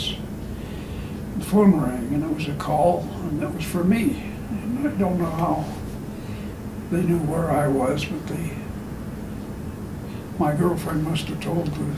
The phone rang, and it was a call, and it was for me. And I don't know how they knew where I was, but my girlfriend must have told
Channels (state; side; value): identical; both; correlation 1.00